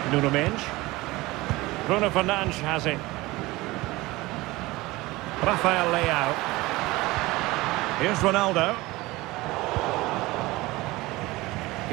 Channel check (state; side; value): quieter; left; 20.3 dB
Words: Nuno Mendes. Bruno Fernandes has it. Rafael Leao. Here's Ronaldo.